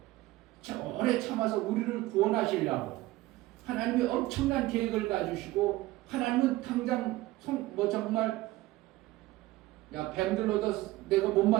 오래 참아서 우리를 구원하시려고 하나님이 엄청난 계획을 가지시고, 하나님은 당장 정말 뱀들로도 내가 못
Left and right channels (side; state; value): left; quieter; 17.8 dB